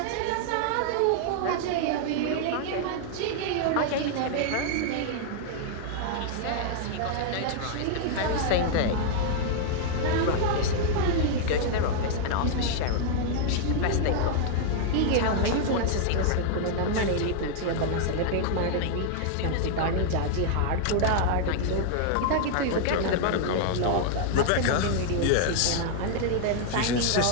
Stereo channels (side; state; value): both; different; correlation 0.00